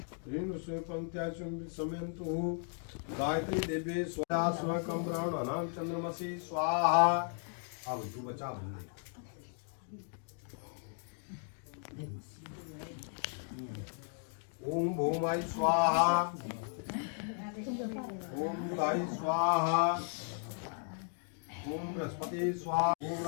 ऋण पंक्त्या समयन्तु, गायत्री देवे स्वाहा स्वकं ब्राह्मणानां चंद्रमसि स्वाहा। अब तू बचा बंदे। ओम भूमाय स्वाहा, ओम बुधाय स्वाहा, ओम बृहस्पति स्वाहा, ओम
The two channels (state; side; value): silent; right; 54 dB below the other